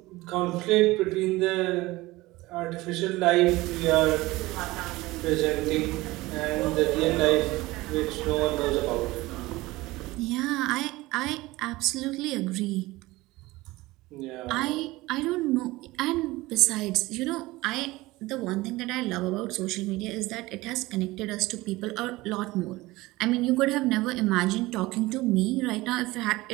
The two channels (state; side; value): quieter; left; 19.9 dB